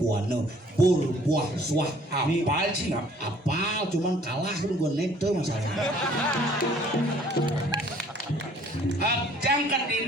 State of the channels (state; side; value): normal; both; correlation 0.57